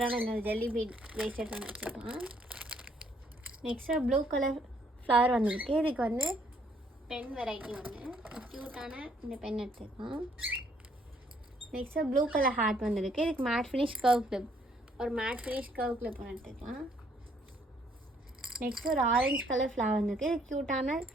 இந்த ஜெல்லி பீட் பிரேஸ்லெட் ஒன்று வச்சுக்கலாம். நெக்ஸ்ட்டு ப்ளூ கலர் ஃப்ளவர் வந்துருக்கு. இதுக்கு வந்து பென் வெரைட்டி ஒன்று க்யூட்டான இந்த பென் எடுத்துக்கலாம். நெக்ஸ்ட்டு ப்ளூ கலர் ஹார்ட் வந்துருக்கு. இதுக்கு மேட் ஃபினிஷ் கர்வ் கிளிப், ஒரு மேட் ஃபினிஷ் கர்வ் கிளிப் ஒன்று எடுத்துக்கலாம். நெக்ஸ்ட்டு ஒரு ஆரஞ்சு கலர் ஃப்ளவர் வந்துருக்கு. இது க்யூட்டான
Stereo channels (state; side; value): normal; both; correlation 0.66